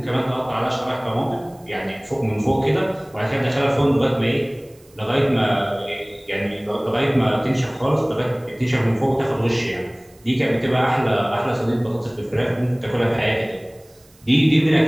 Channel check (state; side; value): noise; right; hiss, 30 dB below the sound